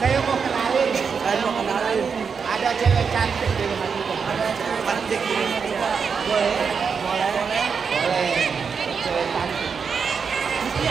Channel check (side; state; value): left; quieter; 5.9 dB